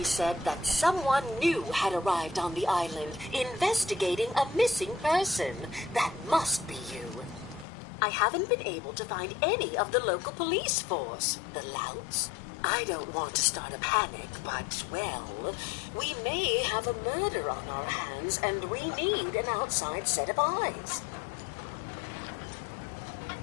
said that someone new had arrived on the island, investigating a missing person. That must be you. I haven't been able to find any of the local police force. The louts? I don't want to start a panic, but, well, we may have a murder on our hands, and we need an outside set of eyes.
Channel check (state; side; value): drops out; right; at 7.7 s